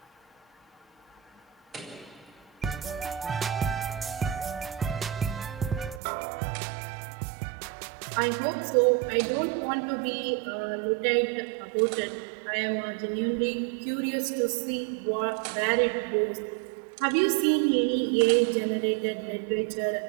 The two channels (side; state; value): left; drops out; at 6.0 s